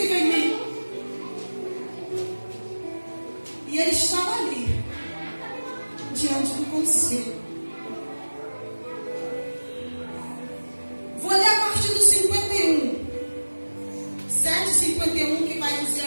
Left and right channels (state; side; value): inverted; both; correlation -1.00